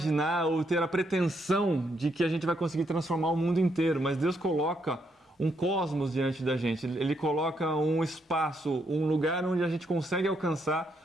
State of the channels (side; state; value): both; normal; correlation 0.76